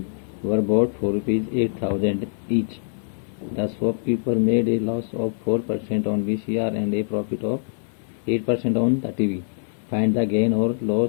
were bought for ₹8,000 each. The shopkeeper made a loss of 4% on VCR and a profit of 8% on the TV. Find the gain or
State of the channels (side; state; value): right; silent; 55 dB below the other